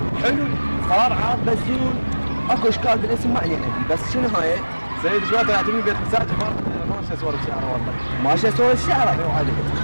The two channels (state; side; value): inverted; both; correlation -1.00